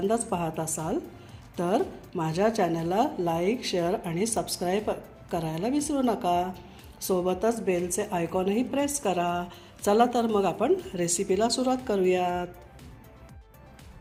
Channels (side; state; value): both; identical; correlation 1.00